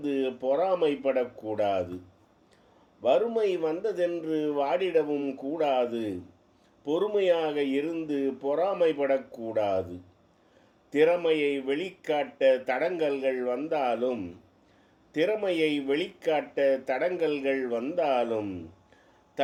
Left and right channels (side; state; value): both; identical; correlation 1.00